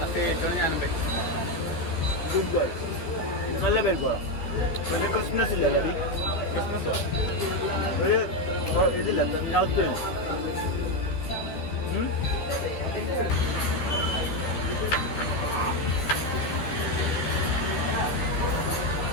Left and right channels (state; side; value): late; right; 13 ms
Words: ഞാനും നല്ല പരിപ്പാണ്. ഒരു ക്രിസ്മസ് ഇല്ലേ? ഒരു ഇതില്ല നൗത്ത്